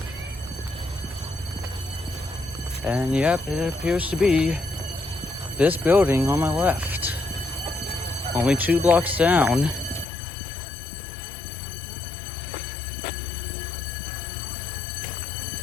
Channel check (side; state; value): right; drops out; at 10.1 s